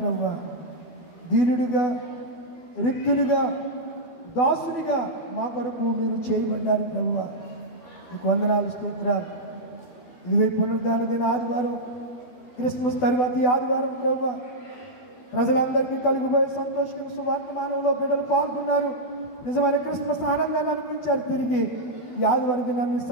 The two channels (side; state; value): right; late; 12 ms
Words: దీనుడిగా, రిక్తునిగా, దాసునిగా మా కొరకు మీరు చేయబడ్డారు ప్రభువా. మీకు వందనాలు, స్తోత్రాలు. ఇదిగో పునరుద్ధాన దిన ఆదివారం, క్రిస్మస్ తర్వాత ఈ ఆదివారం ప్రభువా ప్రజలందరికీ కలిగిపోయే సంతోషం సువార్తమానంలో బిడ్డలు పాల్గొన్నారు. నిజమైన క్రిస్మస్ ఆనందాన్ని అనుభవించారు. తిరిగి ఈ ఆదివారం దినాన్ని